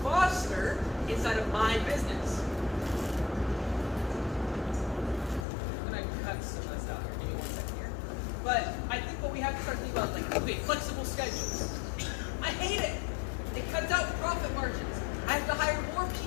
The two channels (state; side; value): drops out; right; at 5.5 s